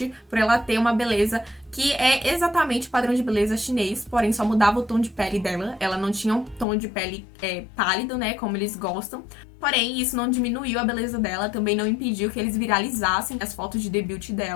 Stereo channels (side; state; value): right; drops out; at 6.7 s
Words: por ela ter uma beleza que é exatamente o padrão de beleza chinês, porém só mudava o tom de pele dela. Ela não tinha um tom de pele pálido, né, como eles gostam. Porém, isso não diminuiu a beleza dela, também não impediu que eles viralizassem as fotos de debut